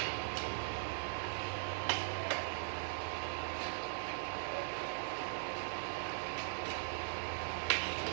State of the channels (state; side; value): silent; left; digital silence